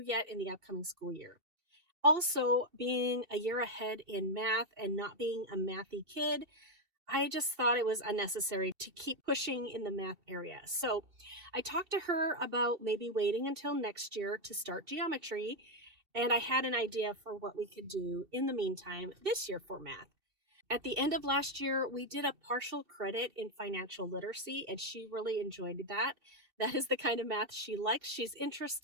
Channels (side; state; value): left; late; 2.7 ms